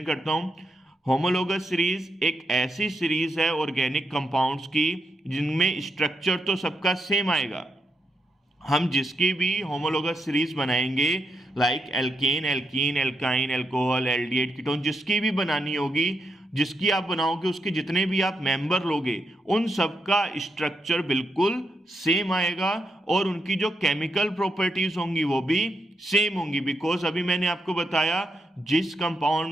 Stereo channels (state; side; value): normal; both; correlation 0.82